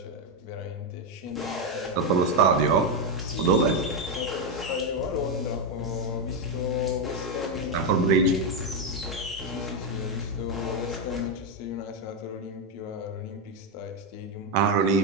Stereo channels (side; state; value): both; normal; correlation 0.05